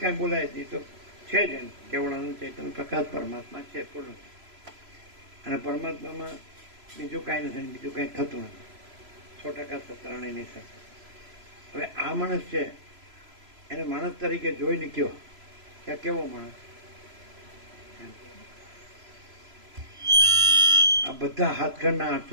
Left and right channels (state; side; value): late; left; 3.0 ms